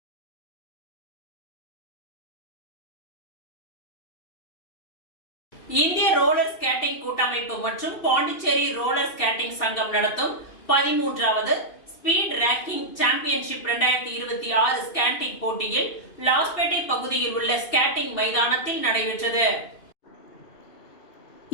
இந்திய ரோலர் ஸ்கேட்டிங் கூட்டமைப்பு மற்றும் பாண்டிச்சேரி ரோலர் ஸ்கேட்டிங் சங்கம் நடத்தும் 13வது ஸ்பீட் ரேங்கிங் சாம்பியன்ஷிப் 2026 ஸ்கேட்டிங் போட்டியில் லாஸ்பேட்டை பகுதியில் உள்ள ஸ்கேட்டிங் மைதானத்தில் நடைபெற்றது.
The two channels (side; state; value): right; late; 2.6 ms